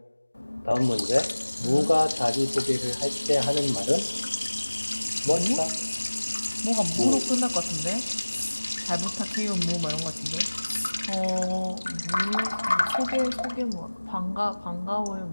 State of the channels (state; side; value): inverted; both; correlation -1.00